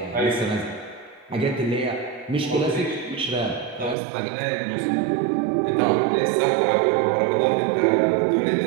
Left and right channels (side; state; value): left; drops out; at 4.0 s